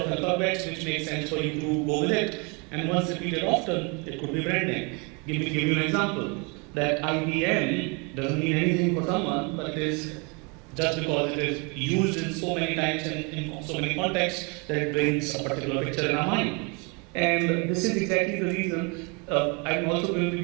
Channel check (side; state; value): left; quieter; 31.6 dB